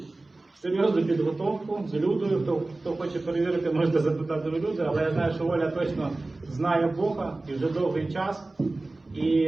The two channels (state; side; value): quieter; left; 3.1 dB